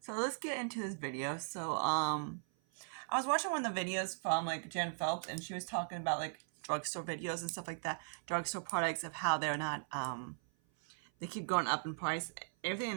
let's get into this video. So I was watching one of the videos from like Jen Phelps, and she was talking about like drugstore videos and stuff like that, drugstore products of how they're not they keep going up in price. Everything in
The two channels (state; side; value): silent; left; 52 dB below the other